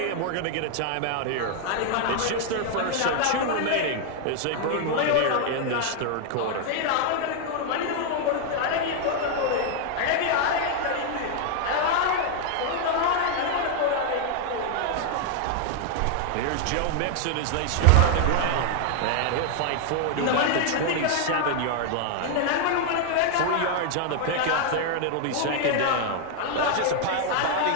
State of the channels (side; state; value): both; different; correlation 0.00